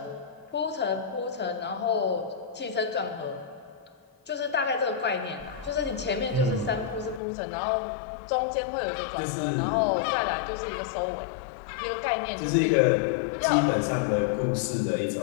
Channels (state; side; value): drops out; right; at 7.2 s